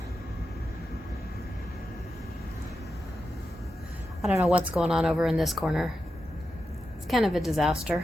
I don't know what's going on over in this corner. It's kind of a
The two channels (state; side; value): normal; both; correlation 0.89